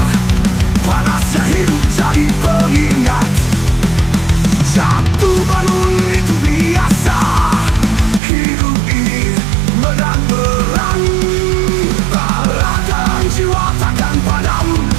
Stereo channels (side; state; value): left; drops out; at 8.2 s